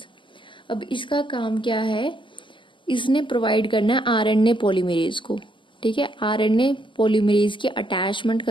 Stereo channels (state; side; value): late; right; 0.24 ms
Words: अब इसका काम क्या है, इसने provide करना है RNA polymerase को, ठीक है. आरएनए पॉलीमरेज की अटैचमेंट